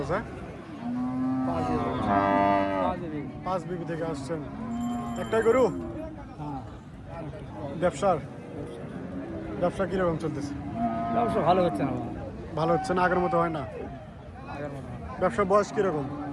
5 বিবি থেকে আসছেন। একটাই গরু? ব্যবসা কিরকম চলতেছে? ব্যবসা ভালো হচ্ছে না। ভালো হচ্ছে না, আগের মতো হয় না। আগের মতো ব্যবসার বয়স কিরকম?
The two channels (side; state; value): both; identical; correlation 1.00